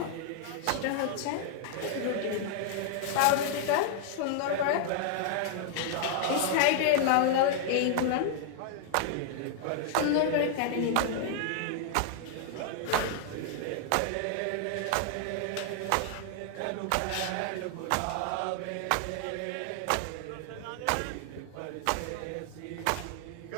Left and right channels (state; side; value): different; both; correlation 0.00